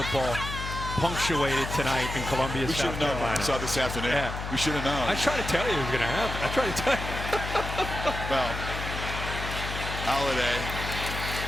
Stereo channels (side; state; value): left; noise; hum, 6 dB below the sound